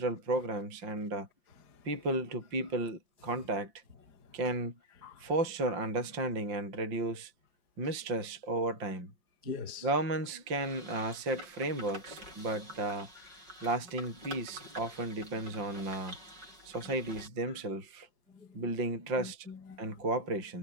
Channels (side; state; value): left; late; 5.7 ms